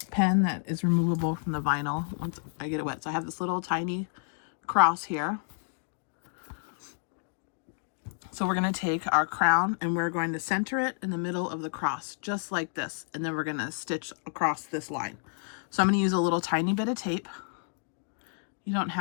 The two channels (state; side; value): silent; right; 58 dB below the other